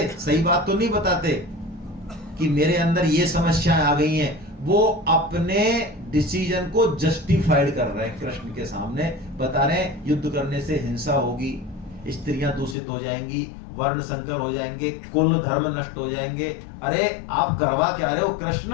सही बात तो नहीं बताते कि मेरे अंदर ये समस्याएं आ गई हैं। वो अपने डिसीजन को जस्टिफाइड कर रहे हैं, कृष्ण के सामने बता रहे हैं युद्ध करने से हिंसा होगी, स्त्रियां दूषित हो जाएंगी, वर्ण संकर हो जाएंगे, कुल धर्म नष्ट हो जाएंगे। अरे आप करवा क्या रहे हो कृष्ण?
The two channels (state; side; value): drops out; right; at 12.8 s